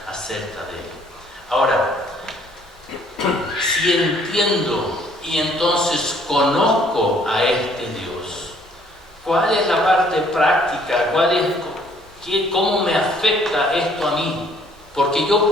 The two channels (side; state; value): both; normal; correlation 0.61